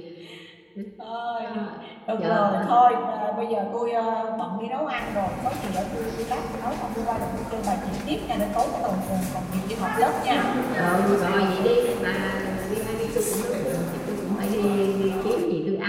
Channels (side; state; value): both; identical; correlation 1.00